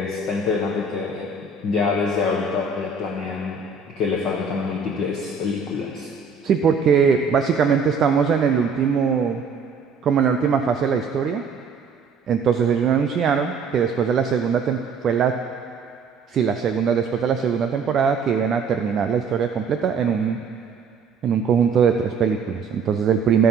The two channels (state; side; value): quieter; left; 4.8 dB